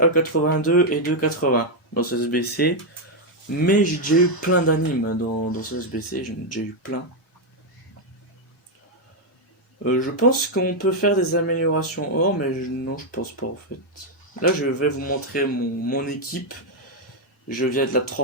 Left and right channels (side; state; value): both; normal; correlation 0.02